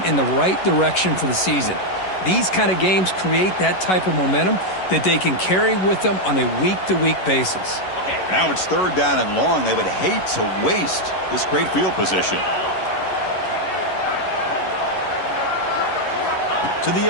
in the right direction for the season. These kind of games create that type of momentum that they can carry with them on a week-to-week basis. Now it's 3rd down and long. They would hate to waste this great field position. To the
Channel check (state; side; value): late; right; 11 ms